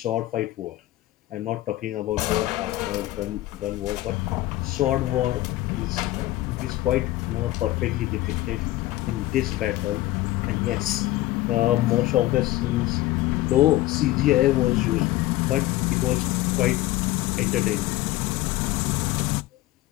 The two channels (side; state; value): right; quieter; 16.5 dB